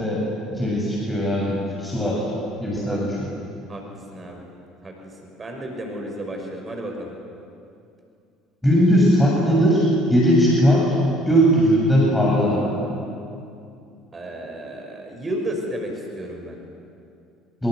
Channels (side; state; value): both; normal; correlation 0.61